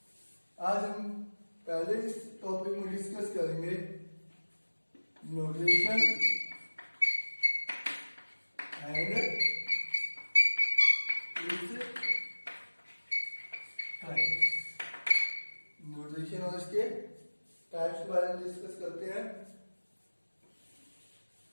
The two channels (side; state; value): both; inverted; correlation -1.00